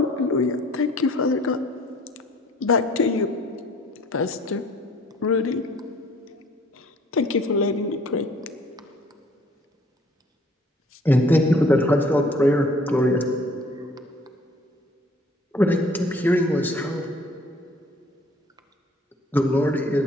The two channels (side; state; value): both; normal; correlation 0.56